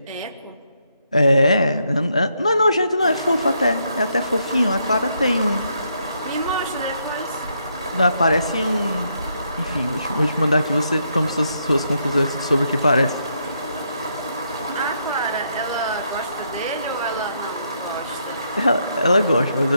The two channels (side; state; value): both; inverted; correlation -0.77